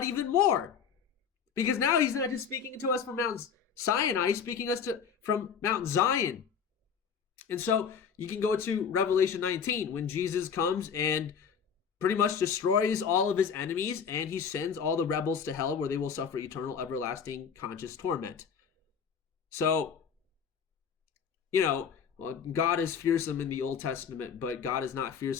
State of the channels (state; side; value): quieter; right; 6.9 dB